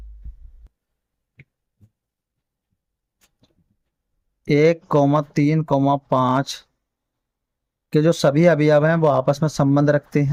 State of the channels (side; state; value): both; identical; correlation 1.00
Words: एक कौमा 3,5 के जो सभी अवयव हैं वो आपस में संबंध रखते